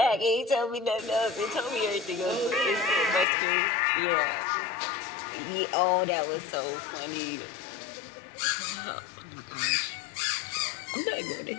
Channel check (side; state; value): right; drops out; at 3.2 s